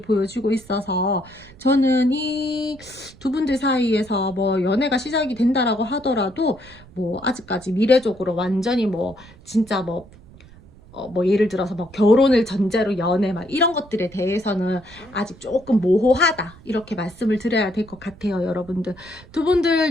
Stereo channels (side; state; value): right; noise; rumble, 23 dB below the sound